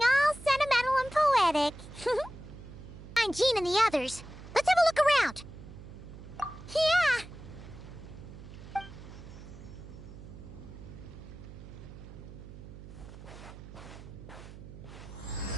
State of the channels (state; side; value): noise; right; hum, 14 dB below the sound